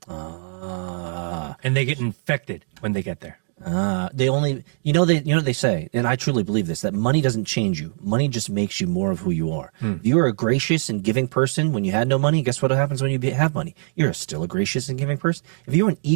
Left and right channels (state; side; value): silent; left; digital silence